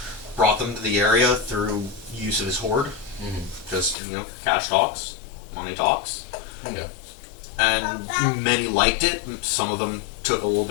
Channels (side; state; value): right; drops out; at 4.0 s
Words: brought them to the area through use of his hoard. Mm-hmm. Just, cash talks, money talks. Yeah. And many liked it. Some of them took a little